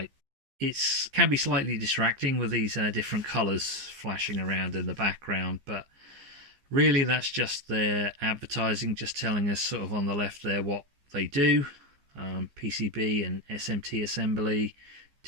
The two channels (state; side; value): late; left; 15 ms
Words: It can be slightly distracting with these different colours flashing around in the background, but really that's just their advertising, just telling us sort of on the left there what they do. PCB and SMT assembly,